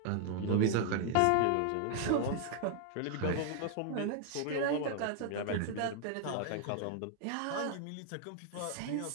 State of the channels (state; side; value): different; both; correlation 0.00